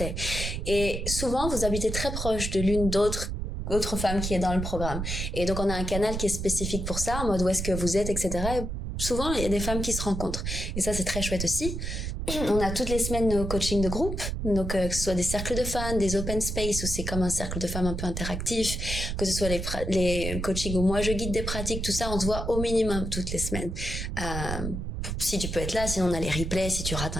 Et souvent vous habitez très proche de l'une d'autre femme qui est dans le programme. Et donc, on a un canal qui est spécifique pour ça, en mode où est-ce que vous êtes, etc. Et souvent, il y a des femmes qui se rencontrent. Et ça, c'est très chouette aussi. On a toutes les semaines nos coachings de groupe. Donc, que ce soit des cercles de fans, des open space, où c'est comme un cercle de femmes un peu interactif, que ce soit les coachings où moi je guide des pratiques, tout ça, on se voit au minimum toutes les semaines. Si tu peux être là, sinon on a les replays, si tu rates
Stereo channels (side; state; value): right; noise; rumble, 4 dB below the sound